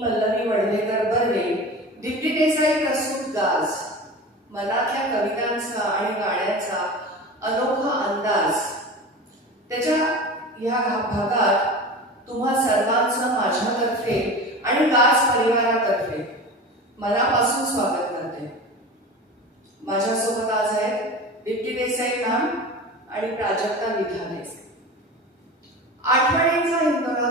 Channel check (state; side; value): normal; both; correlation 0.32